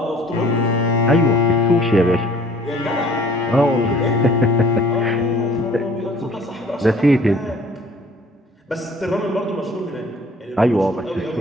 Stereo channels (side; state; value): both; normal; correlation 0.53